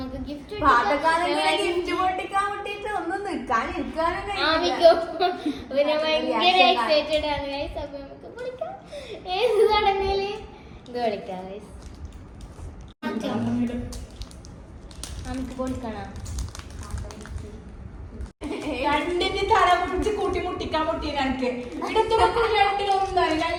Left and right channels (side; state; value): both; identical; correlation 1.00